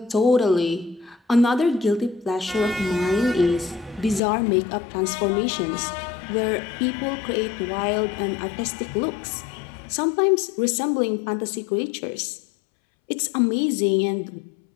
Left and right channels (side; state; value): right; drops out; at 4.2 s